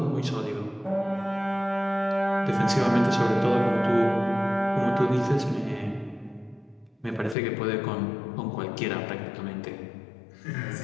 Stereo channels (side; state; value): right; drops out; at 7.4 s